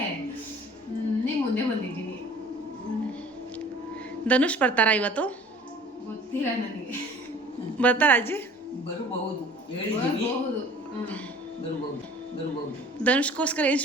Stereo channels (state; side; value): normal; both; correlation 0.48